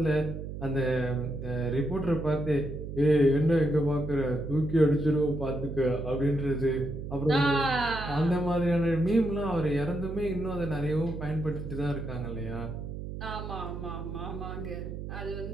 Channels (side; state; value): right; noise; hum, 8 dB below the sound